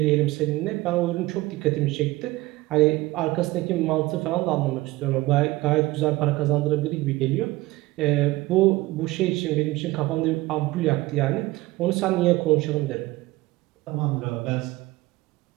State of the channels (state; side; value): quieter; left; 19.3 dB